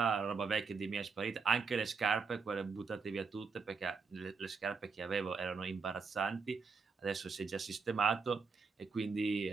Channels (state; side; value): quieter; left; 5.1 dB